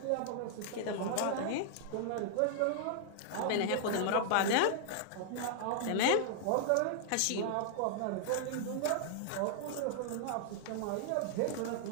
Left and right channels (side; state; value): both; different; correlation -0.01